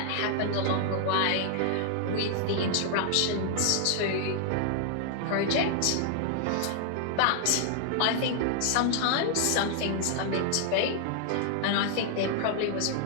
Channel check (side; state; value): both; different; correlation 0.00